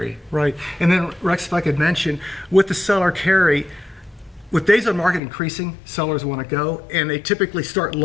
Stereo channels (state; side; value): drops out; right; at 5.2 s